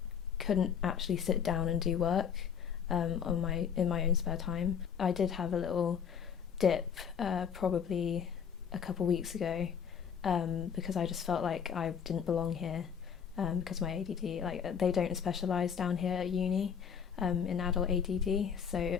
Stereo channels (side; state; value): right; quieter; 7.4 dB